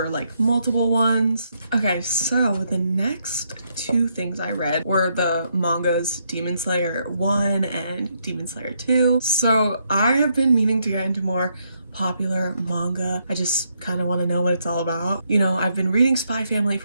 like multiple ones. Okay, so the next 2 things I read were the mangas Demon Slayer 1 and Demon Slayer 2. So I have been meaning to get into more popular manga. I just kind of want to know what it's all about. You know, I've been reading Spy Family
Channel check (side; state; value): both; inverted; correlation -0.76